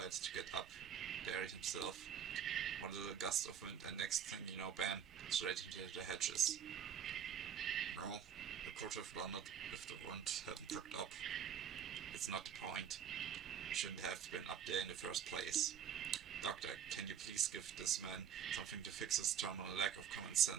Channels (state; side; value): quieter; left; 8.4 dB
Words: to get up there himself. One little gust of wind and next thing you know, bam, straight into the hedges. No, I could have done it if the wind hadn't picked up. It's not the point. I shouldn't have been up there in the first place. Doctor, can you please give this man something to fix his terminal lack of common